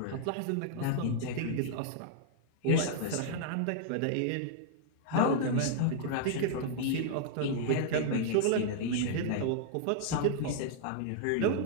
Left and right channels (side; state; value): both; different; correlation -0.01